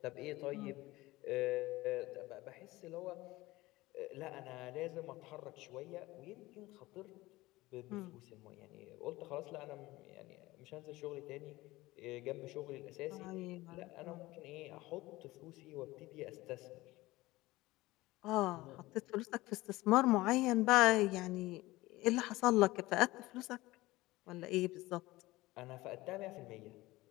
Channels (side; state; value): right; quieter; 19.2 dB